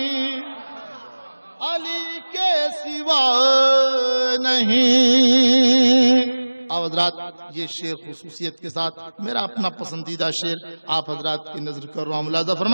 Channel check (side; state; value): both; inverted; correlation -1.00